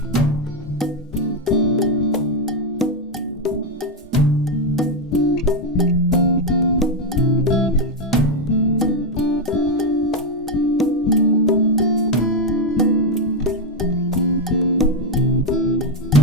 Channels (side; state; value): both; normal; correlation 0.03